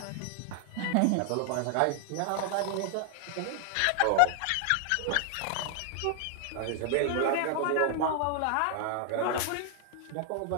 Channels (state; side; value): different; both; correlation 0.00